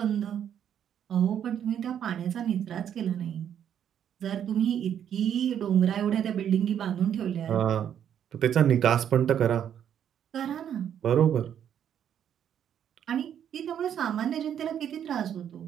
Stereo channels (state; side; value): quieter; left; 9.3 dB